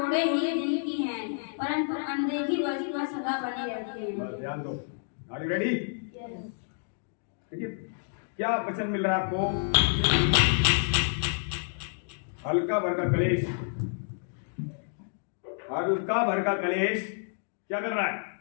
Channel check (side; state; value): right; silent; digital silence